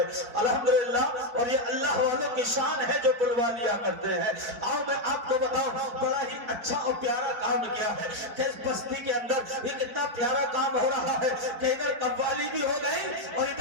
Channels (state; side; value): late; left; 4.5 ms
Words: الحمدللہ. اور یہ اللہ والوں کی شان ہے جو بلوا لیا کرتے ہیں. آؤ میں آپ کو بتاؤں، بڑا ہی اچھا اور پیارا کام کیا ہے کہ اس بستی کے اندر یہ کتنا پیارا کام ہو رہا ہے کہ ادھر قوالی بھی ہو گئی اور